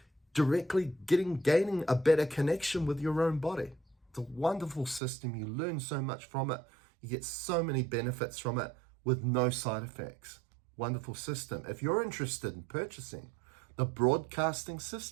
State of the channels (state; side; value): drops out; left; at 5.0 s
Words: directly gaining a better connection with your own body. It's a wonderful system. You learn so much from it. You get so many benefits from it with no side effects. Wonderful system. If you're interested in purchasing the broadcasting